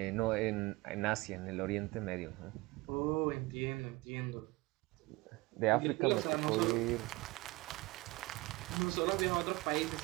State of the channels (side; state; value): left; quieter; 22.2 dB